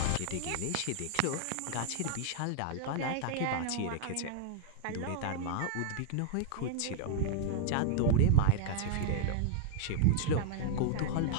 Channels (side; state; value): both; different; correlation -0.01